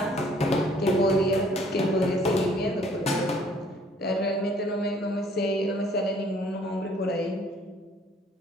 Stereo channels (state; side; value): normal; both; correlation 0.59